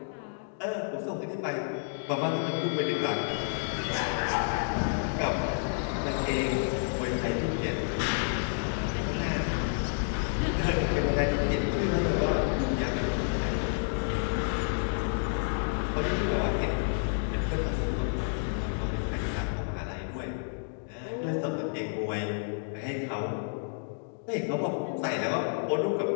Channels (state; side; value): silent; right; digital silence